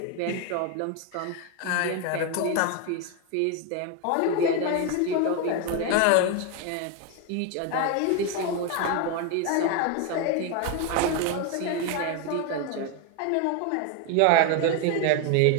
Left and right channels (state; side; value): different; both; correlation 0.01